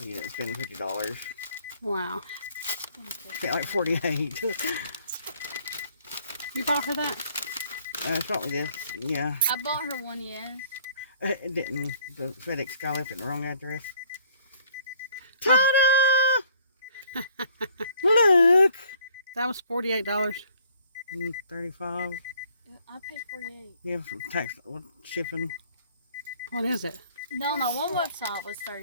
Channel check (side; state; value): both; inverted; correlation -0.60